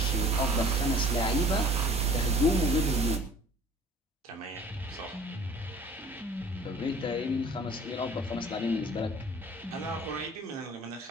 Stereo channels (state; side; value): normal; both; correlation 0.50